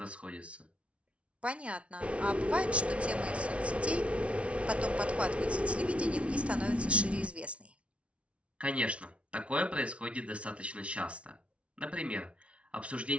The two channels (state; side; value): late; left; 0.062 ms